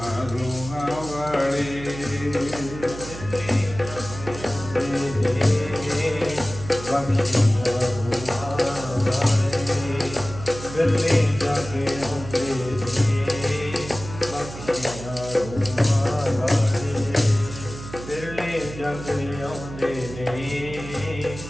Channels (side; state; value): right; noise; hum, 12 dB below the sound